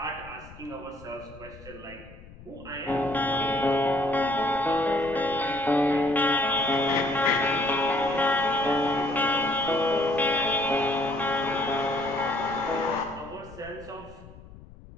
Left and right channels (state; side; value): noise; left; rumble, 19 dB below the sound